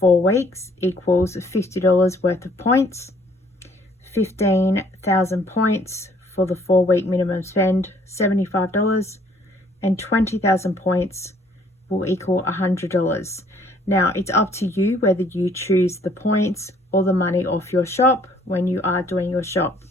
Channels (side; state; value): both; normal; correlation 0.61